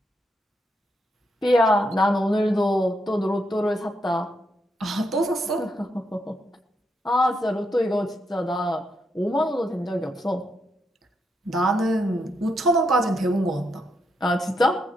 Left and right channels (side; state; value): both; normal; correlation 0.80